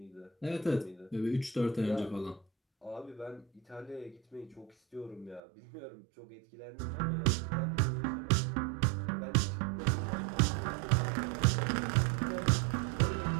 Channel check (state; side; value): drops out; left; at 5.4 s